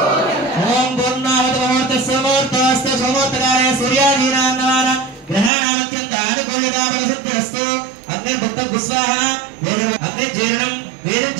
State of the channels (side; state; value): left; drops out; at 5.5 s